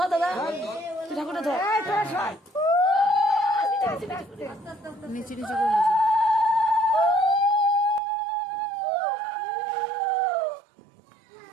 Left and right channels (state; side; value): drops out; left; at 8.0 s